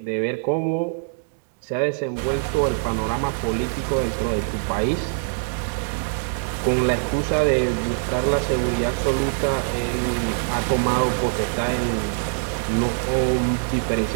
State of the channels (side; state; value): left; silent; digital silence